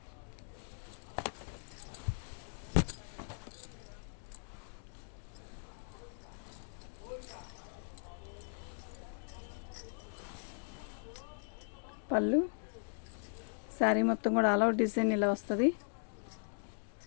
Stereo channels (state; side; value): silent; right; digital silence